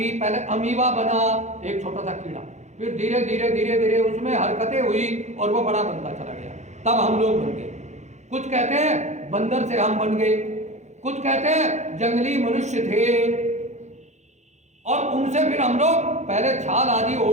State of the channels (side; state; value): left; late; 0.33 ms